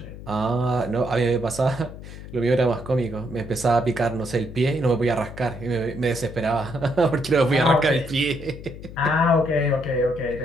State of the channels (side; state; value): left; noise; hum, 13 dB below the sound